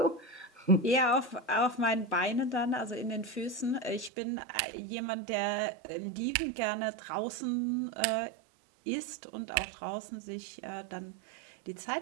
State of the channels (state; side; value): drops out; left; at 4.1 s